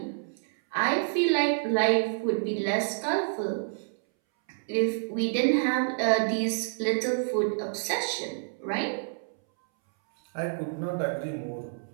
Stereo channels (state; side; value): silent; left; 59 dB below the other